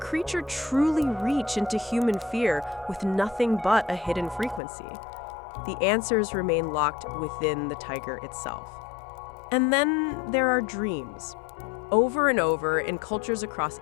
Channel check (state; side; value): drops out; right; at 4.6 s